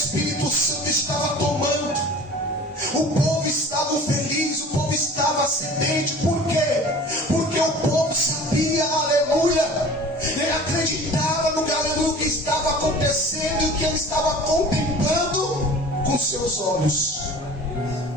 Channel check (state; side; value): normal; both; correlation 0.42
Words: Santo estava tomando, o povo estava feliz, o povo estava sedente. Por quê? Porque acontecendo e o que ele estava contemplando com seus olhos.